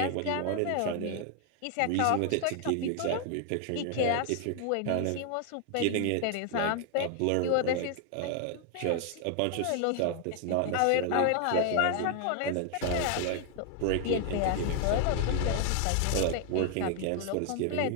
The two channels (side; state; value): both; different; correlation 0.00